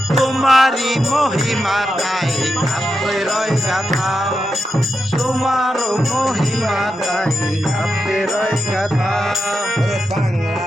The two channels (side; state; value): both; normal; correlation 0.87